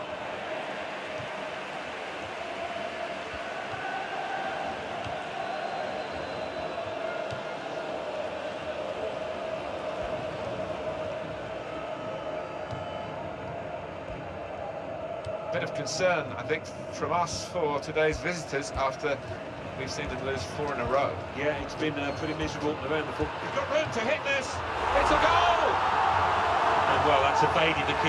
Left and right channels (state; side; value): identical; both; correlation 1.00